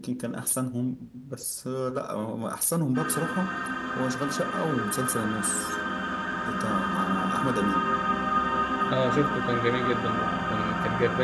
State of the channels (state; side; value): identical; both; correlation 1.00